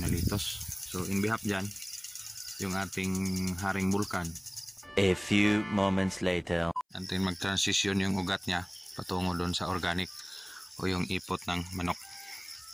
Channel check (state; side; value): identical; both; correlation 1.00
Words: litos. So in behalf dyan, yung ating haring bulkan. A few moments later. Antin mag-transition yung ugat niya patungo doon sa organic o yung ipot ng manok.